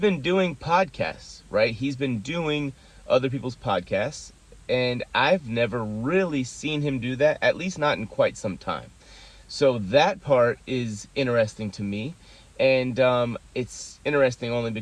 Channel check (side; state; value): both; identical; correlation 1.00